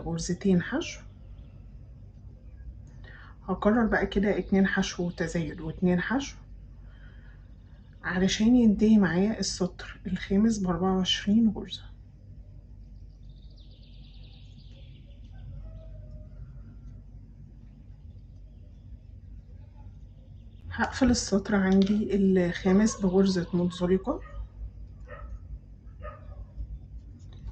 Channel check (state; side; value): identical; both; correlation 1.00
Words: حشو. هكرر بقى كده 2 حشو تزايد و2 حشو علشان ينتهي معايا السطر الخامس ب24 غرزة. هقفل السطر عندي الخامس بغرزة منزلقة.